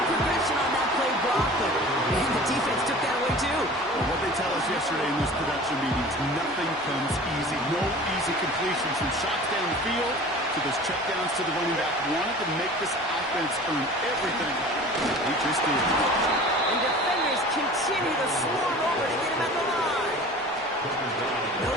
progression on that play, Brock. But man, the defense took that away too. Well, what they tell us yesterday in those production meetings, nothing comes easy. No easy completions from shots down the field to those checkdowns to the running back. Wanted to make this offense earn everything. He just did. And defenders continue to swarm over to get him at the line. No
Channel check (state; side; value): normal; both; correlation 0.41